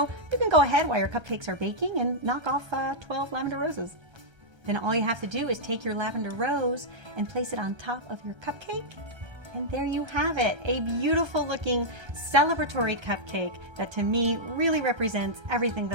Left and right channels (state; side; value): late; left; 1.3 ms